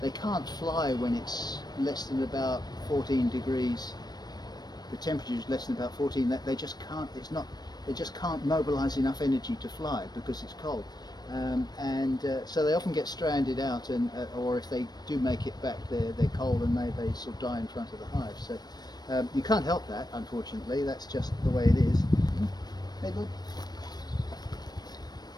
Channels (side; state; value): right; late; 0.19 ms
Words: they can't fly when it's less than about 14 degrees, the temperature is less than about 14, that they just can't, they just can't mobilize enough energy to fly because it's cold. So they often get stranded out, and or if they do make it back, they're cold and they sort of die in front of the hive. So you can't help that, unfortunately. That's just the way it is. Hey, good.